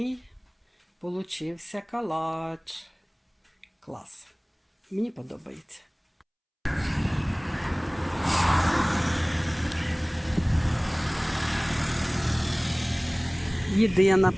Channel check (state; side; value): identical; both; correlation 1.00